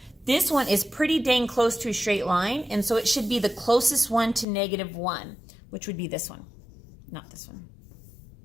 This one is pretty dang close to a straight line, and so it should be the closest one to -1, which would be this one, not this one.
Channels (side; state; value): right; drops out; at 4.5 s